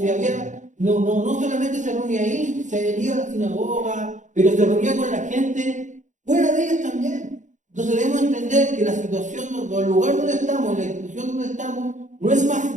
había, no solamente se reunía ahí, se iba a la sinagoga, pero se reunía con la gente fuera de ellas también. Entonces debemos entender que la situación, o el lugar donde estamos, la institución donde estamos, no es más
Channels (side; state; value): left; late; 0.36 ms